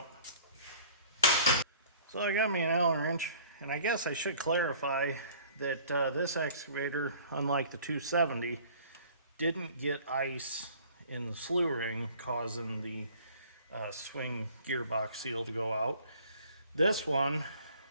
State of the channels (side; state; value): both; inverted; correlation -0.51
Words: So I got me an Allen wrench, and I guess I should clarify that this excavator, unlike the 270, didn't get ice in the slew ring causing the swing gearbox seal to go out. This one